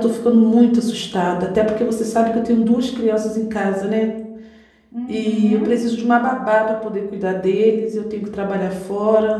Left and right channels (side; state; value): both; identical; correlation 1.00